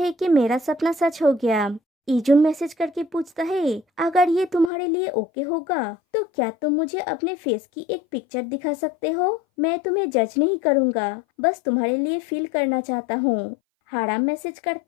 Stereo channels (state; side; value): drops out; right; at 4.7 s